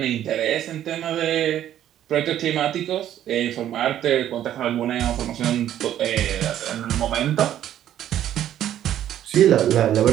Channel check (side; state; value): left; quieter; 11.4 dB